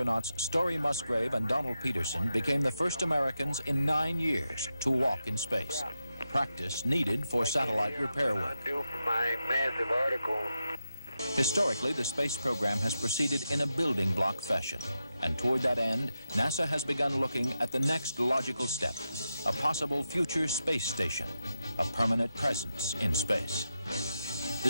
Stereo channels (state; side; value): inverted; both; correlation -0.88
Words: Story Musgrave and Donald Peterson became the first Americans in 9 years to walk in space. Practice needed for satellite repair work. Due for my massive article. Historically, the space program has proceeded in a building block fashion. And toward that end, NASA has begun looking at the next logical step, a possible future space station, a permanent presence in space. The